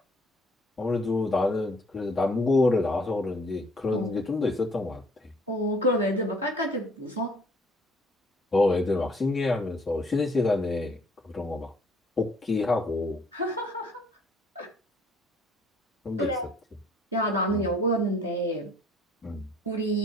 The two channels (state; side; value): normal; both; correlation 0.60